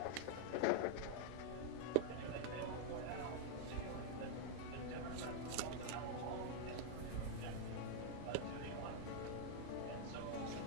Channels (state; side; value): different; both; correlation 0.00